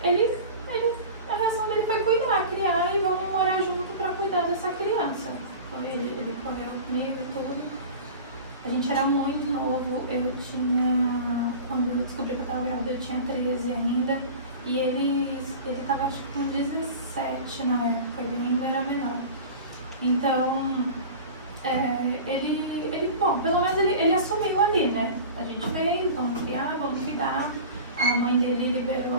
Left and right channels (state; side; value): inverted; both; correlation -0.35